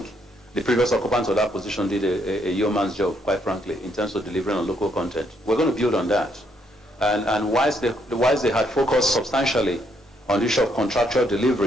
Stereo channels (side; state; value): both; normal; correlation 0.73